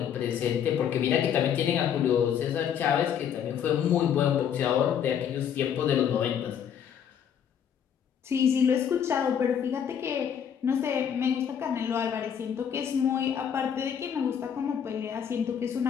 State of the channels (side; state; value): right; quieter; 8.4 dB